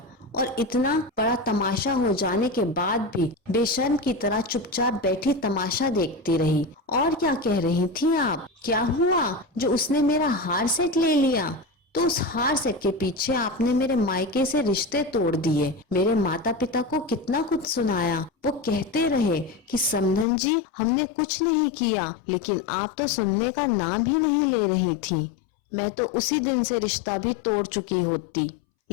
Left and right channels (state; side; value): drops out; right; at 20.2 s